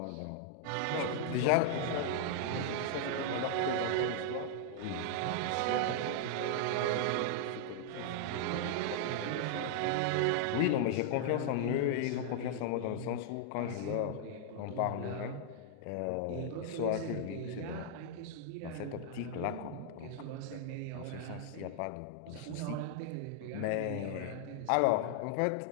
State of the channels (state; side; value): different; both; correlation -0.01